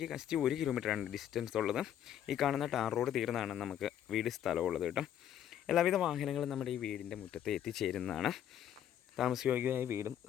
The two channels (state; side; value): quieter; right; 10.4 dB